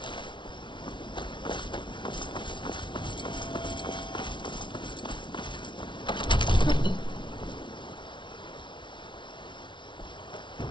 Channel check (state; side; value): late; right; 0.24 ms